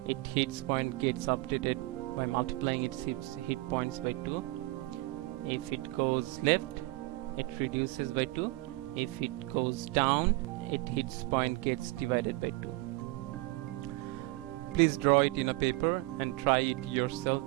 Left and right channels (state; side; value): quieter; left; 21.4 dB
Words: its hit point gets updated by multiplying its hit points by 2. If it goes left, it reduces by 2. If it goes down, its hit point gets divided by 2. Please draw it in a paper and try it yourself